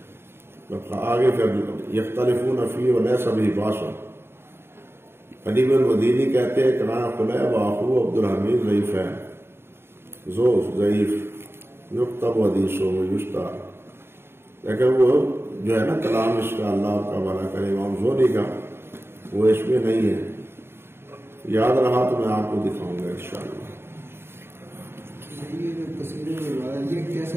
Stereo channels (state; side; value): late; left; 0.11 ms